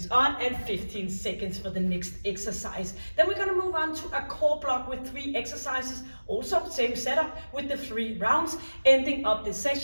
on and 15 seconds for the next exercise. Then we're going to move on to a core block with 3 exercises, also same setup with the 3 rounds, ending up this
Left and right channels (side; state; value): both; inverted; correlation -1.00